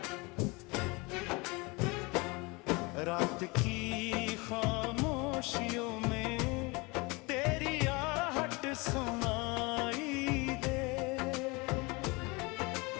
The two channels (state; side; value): quieter; right; 26.5 dB